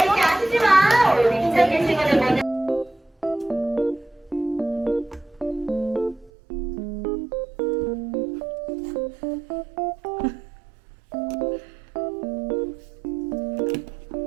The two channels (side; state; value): left; drops out; at 6.3 s